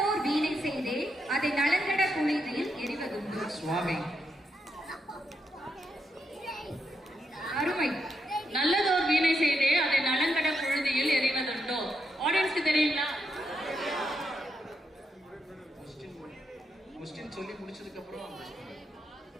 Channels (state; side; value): normal; both; correlation 0.81